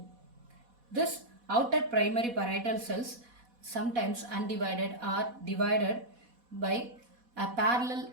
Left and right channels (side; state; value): left; late; 4.1 ms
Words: This outer primary parietal cells, sometimes undivided, are divided by a parallel